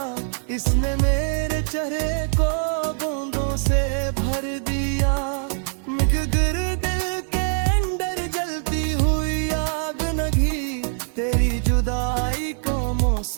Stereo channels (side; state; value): left; silent; digital silence